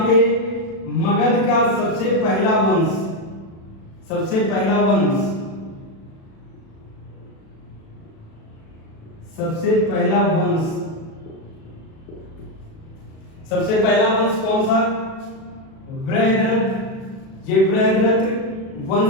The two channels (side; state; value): right; late; 37 ms